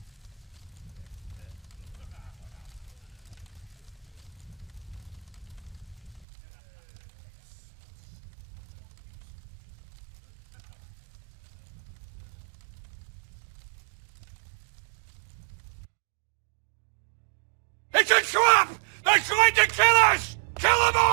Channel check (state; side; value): drops out; left; at 6.2 s